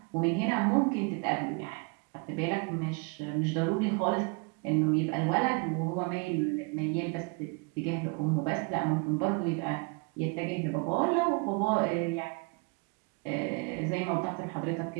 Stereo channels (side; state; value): left; quieter; 31.9 dB